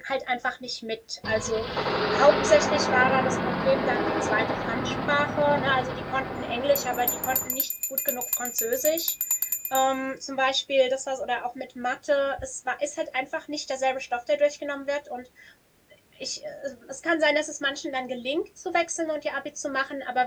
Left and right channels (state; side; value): identical; both; correlation 1.00